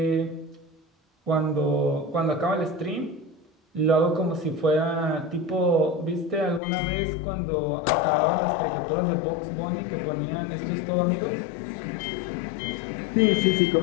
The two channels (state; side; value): drops out; right; at 6.6 s